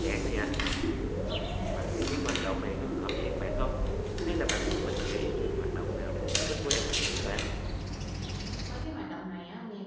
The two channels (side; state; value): both; identical; correlation 1.00